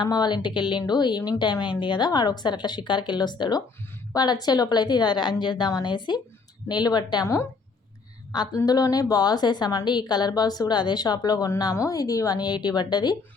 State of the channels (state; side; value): quieter; right; 4.4 dB